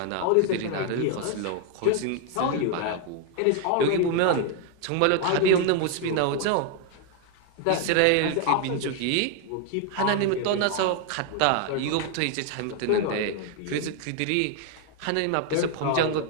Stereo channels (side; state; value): both; different; correlation 0.00